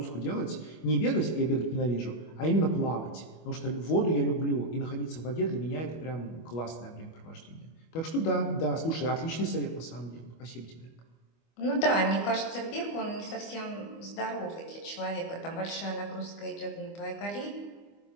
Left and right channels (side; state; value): right; late; 25 ms